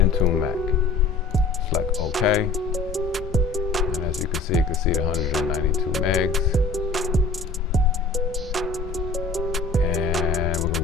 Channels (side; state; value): right; quieter; 4.0 dB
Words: Select OK, and as you can see the 192 megs. And we're